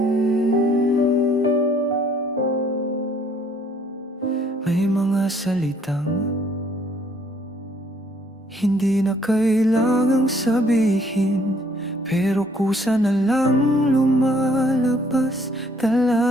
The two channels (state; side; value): normal; both; correlation 0.63